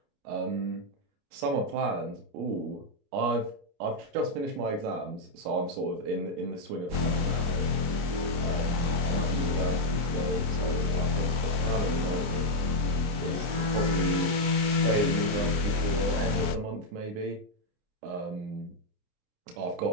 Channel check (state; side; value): late; left; 28 ms